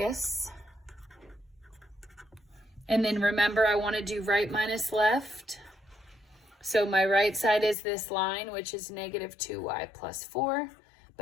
And then remember, I want to do right minus left. So my right side is this line, which is negative 2y plus 4.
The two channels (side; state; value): right; drops out; at 7.8 s